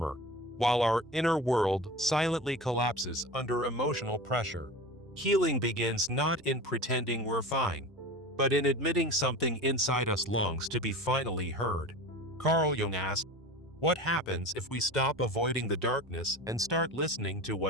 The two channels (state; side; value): normal; both; correlation 0.33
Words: while our inner world silently collapses under emotional pressure. Healing begins not in pretending we're fine, but in admitting something inside us longs to be finally heard. Carl Jung asked, "What happens if we stop avoiding the darkness and start listening to